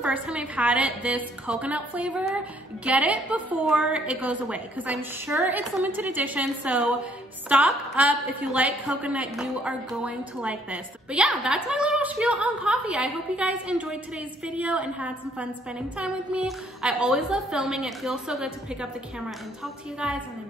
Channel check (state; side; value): normal; both; correlation 0.65